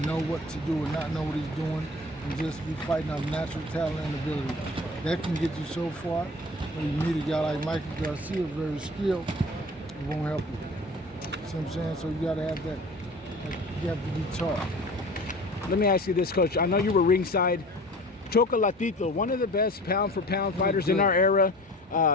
know what to do and not know what he's doing and just be fighting off natural talent and ability. That can get you so far. When you meet a guy like MIKEY GARCIA, very skilled, it won't help you. See what I'm saying? So you gotta have that, you have to be taught. Let me ask you this, Coach. I know you were ringside. Chocolatito, one of the best pound-for-pound fighters in our era.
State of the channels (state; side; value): normal; both; correlation 0.42